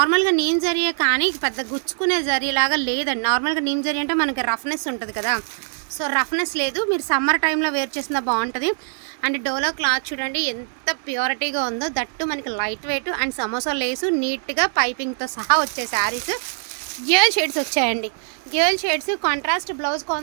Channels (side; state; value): left; silent; digital silence